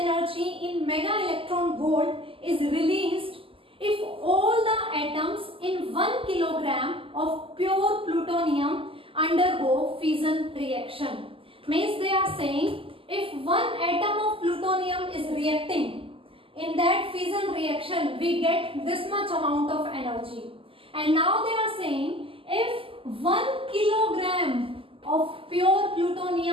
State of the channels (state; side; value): late; left; 0.26 ms